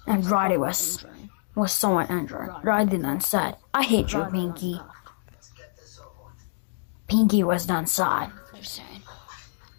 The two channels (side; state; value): right; silent; 61 dB below the other